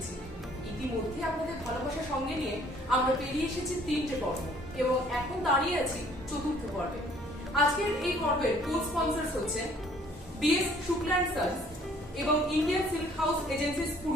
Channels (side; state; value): both; normal; correlation 0.58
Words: ইতিমধ্যে আপনাদের ভালোবাসা সঙ্গে নিয়ে আমরা পেরিয়ে এসেছি 3টে পর্ব এবং এখন দাঁড়িয়ে আছি 4র্থ পর্বে। আজকের এই পর্বের কো স্পন্সরস হচ্ছে বিএস শুক্লা এন্ড সন্স এবং Indian silk house agencies